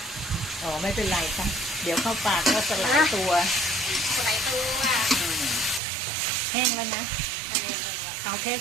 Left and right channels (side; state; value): left; drops out; at 5.8 s